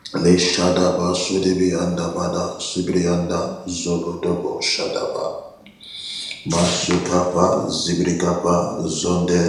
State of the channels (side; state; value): both; identical; correlation 1.00